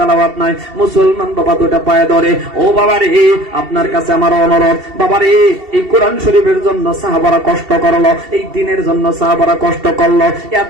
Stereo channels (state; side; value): late; left; 2.7 ms